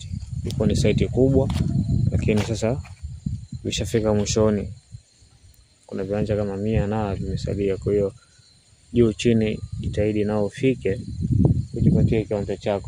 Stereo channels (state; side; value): identical; both; correlation 1.00